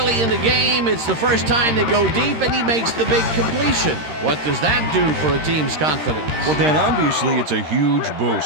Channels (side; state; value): left; late; 13 ms